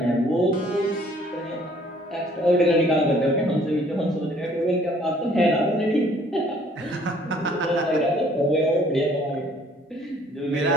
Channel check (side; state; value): both; normal; correlation 0.59